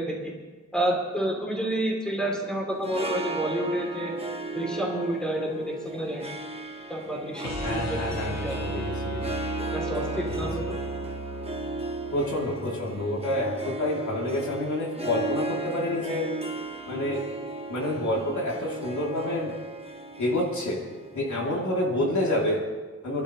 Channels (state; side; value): normal; both; correlation 0.34